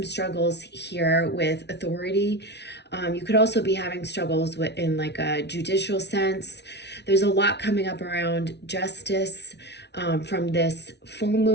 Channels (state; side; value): late; right; 0.50 ms